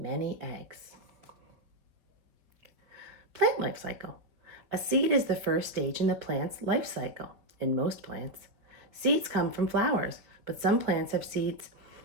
eggs. Plant life cycle. A seed is the first stage in the plant's life cycle. In most plants, seeds come from flowers, but some plants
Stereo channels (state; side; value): late; left; 4.3 ms